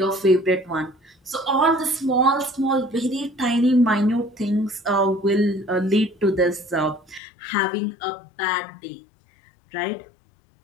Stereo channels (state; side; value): drops out; right; at 7.2 s